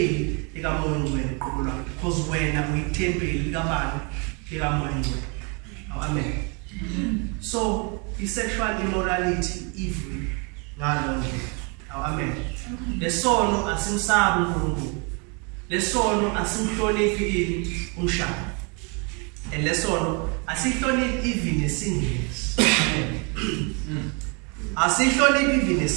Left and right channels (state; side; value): quieter; left; 33.9 dB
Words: likaMoya Ngcwele uqobo lwakhe, because wena uyithempeli likabani, likaMoya Ngcwele. Amen. So sexual immorality evil ngalo nje. Amen. Lesono asimsabi uNkulunkulu. Lesono asimhloniphi ini umshado. And lesono asihloniphi even singles. Amen. Asihloniphi even